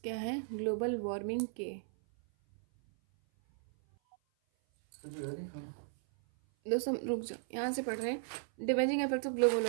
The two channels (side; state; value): left; silent; 54 dB below the other